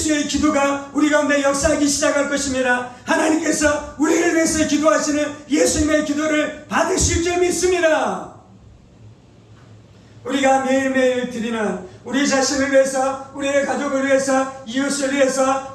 기도가 우리 가운데 역사하기 시작할 것입니다. 하나님께서 우리를 위해서 기도하시는 예수님의 기도를 받으실 줄 믿습니다. 우리가 매일매일 드리는 우리 자신을 위해서, 우리의 가족을 위해서, 이웃을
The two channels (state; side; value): identical; both; correlation 1.00